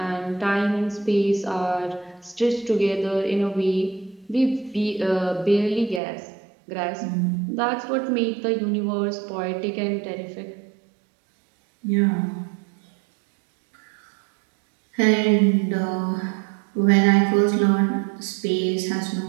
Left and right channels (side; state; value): left; drops out; at 6.0 s